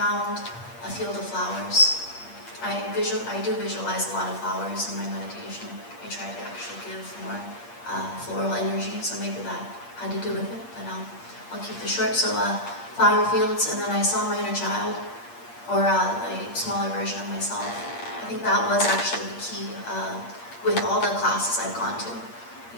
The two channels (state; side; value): late; right; 8.5 ms